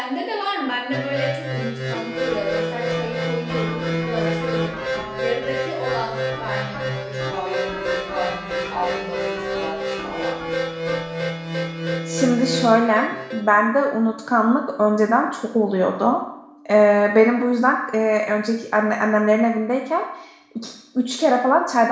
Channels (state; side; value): identical; both; correlation 1.00